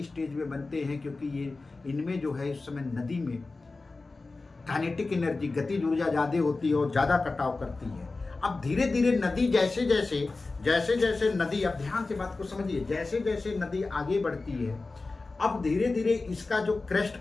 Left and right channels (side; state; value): right; quieter; 3.6 dB